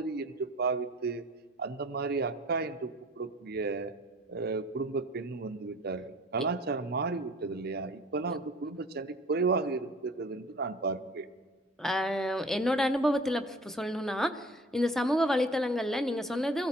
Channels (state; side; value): normal; both; correlation 0.47